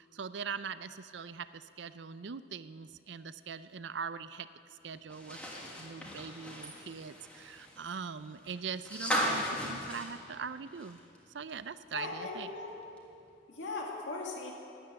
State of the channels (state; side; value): normal; both; correlation 0.09